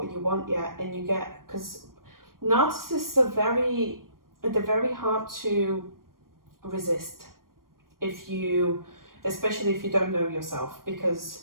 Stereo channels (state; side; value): late; left; 0.91 ms